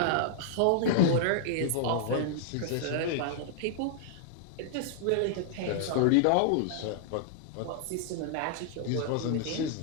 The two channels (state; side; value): different; both; correlation -0.01